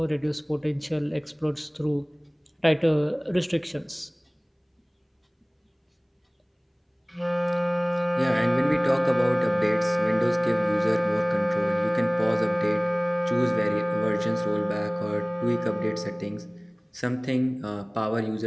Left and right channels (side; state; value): both; identical; correlation 1.00